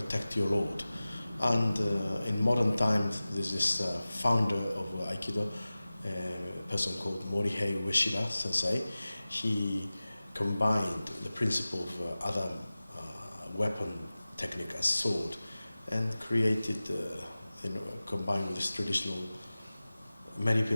your lord. And in modern times, there's this founder of Aikido, a person called Morihei Ueshiba Sensei. He combined the principle of other weapon technique as sword and created, combined with this traditional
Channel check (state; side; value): inverted; both; correlation -0.97